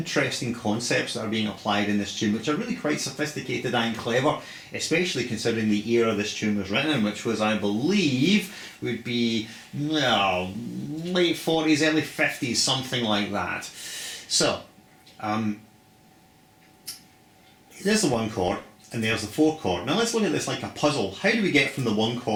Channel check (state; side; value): identical; both; correlation 1.00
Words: concepts that are being applied in this tune which are really quite sophisticated and clever, especially considering the era this tune was written in, which was, I believe, would be late 40s, early 50s, something like that. So, there's the 1 chord and there's the 4 chord. Now let's look at this like a puzzle. How do we get from the 1